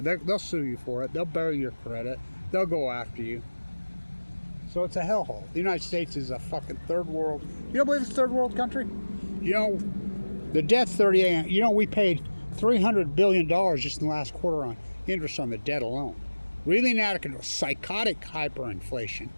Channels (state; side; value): inverted; both; correlation -1.00